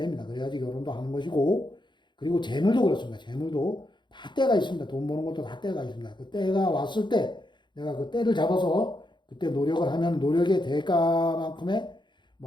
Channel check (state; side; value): late; right; 0.22 ms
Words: 그래야지 결혼도 하는 것이고 그리고 재물도 그렇습니다. 재물도 다 때가 있습니다. 돈 버는 것도 다 때가 있습니다. 그 때가 왔을 때 내가 그 때를 잡아서 그때 노력을 하면 노력의 대가만큼의